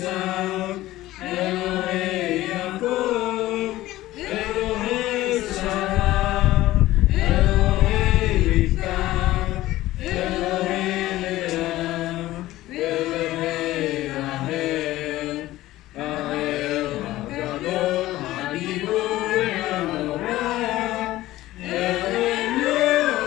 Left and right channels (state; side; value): quieter; right; 16.2 dB